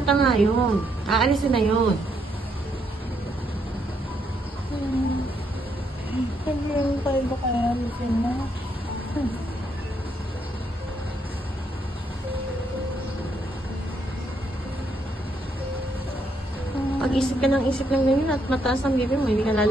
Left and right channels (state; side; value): normal; both; correlation 0.74